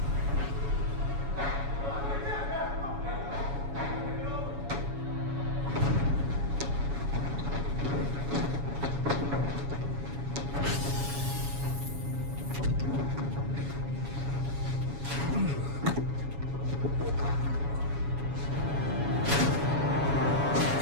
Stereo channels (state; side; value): late; left; 7.1 ms